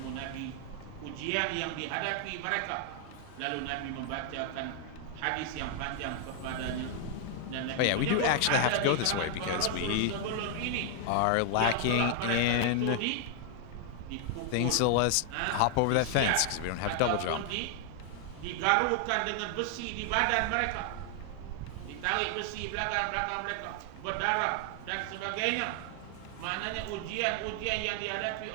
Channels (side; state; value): both; different; correlation 0.00